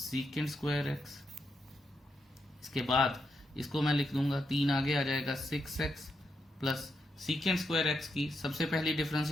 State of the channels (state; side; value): normal; both; correlation 0.82